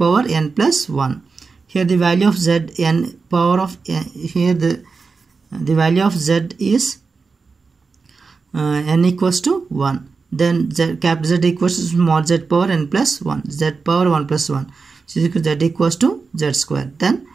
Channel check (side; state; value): left; quieter; 4.7 dB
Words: n plus 1. Here the value of z n power of here the value of z is n equals to 1. Then capital Z equals to small z power n plus 1, z power 1 plus 1. So z equals to z square. Then